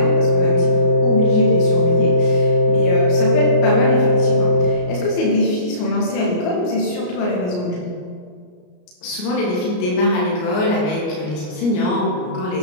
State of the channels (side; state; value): right; late; 33 ms